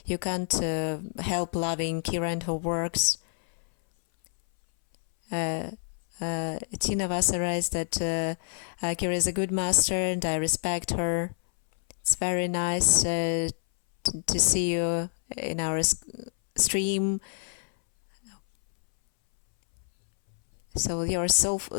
you can't help loving Kira and her works. Tina Vasara is that Kira is a good master, and I respect her. It's very nice to see you in our stream. So your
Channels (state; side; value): silent; right; 60 dB below the other